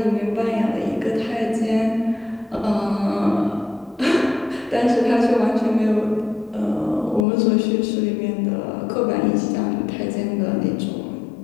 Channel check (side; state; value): right; drops out; at 7.2 s